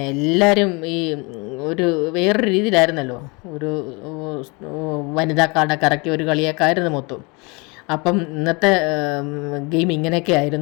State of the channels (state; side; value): quieter; right; 28.8 dB